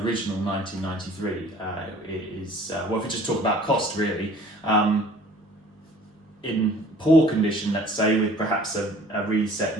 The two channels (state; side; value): normal; both; correlation 0.51